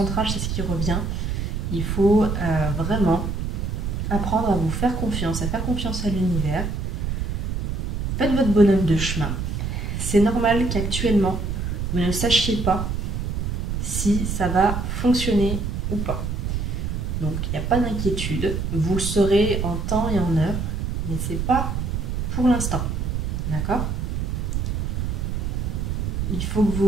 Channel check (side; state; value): right; noise; rumble, 2 dB below the sound